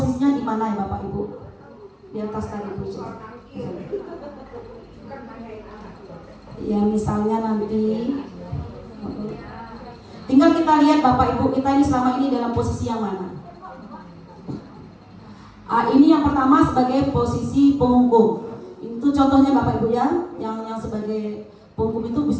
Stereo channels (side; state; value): both; identical; correlation 1.00